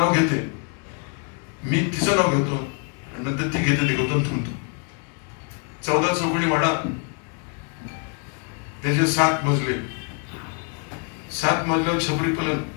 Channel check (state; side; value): quieter; right; 39.6 dB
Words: घेते, मी तिचं नाव घेतो आणि नंतर ती घेते, ते गौतम थांबतो. 14 चौकडी वाडा, त्याचे 7 मजले, 7 मजल्यावर छपरी कलन,